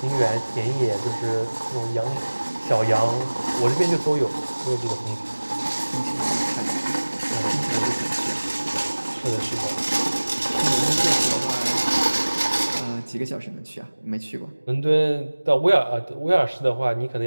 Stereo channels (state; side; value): inverted; both; correlation -1.00